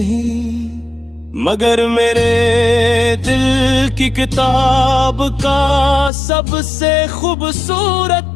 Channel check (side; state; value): right; drops out; at 6.1 s